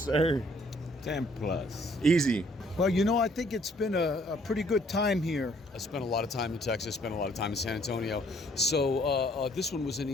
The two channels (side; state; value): both; normal; correlation 0.63